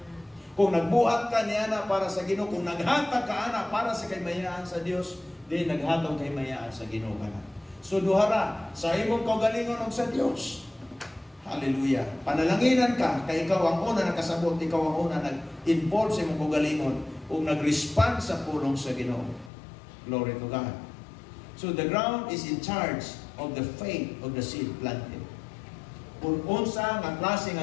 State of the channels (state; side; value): drops out; right; at 19.5 s